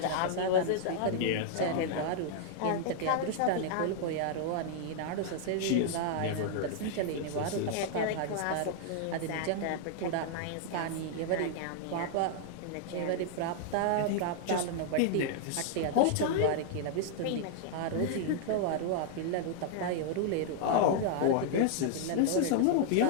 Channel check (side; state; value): both; different; correlation -0.01